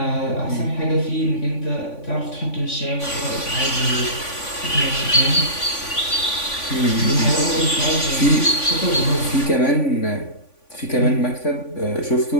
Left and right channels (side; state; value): right; late; 3.5 ms